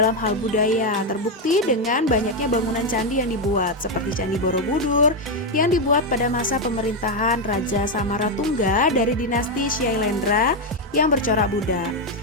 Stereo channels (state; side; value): normal; both; correlation 0.04